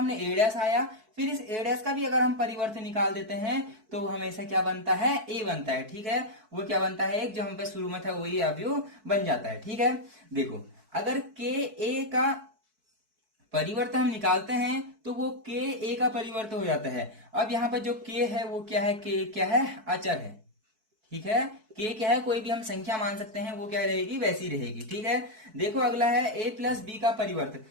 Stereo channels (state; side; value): late; left; 4.6 ms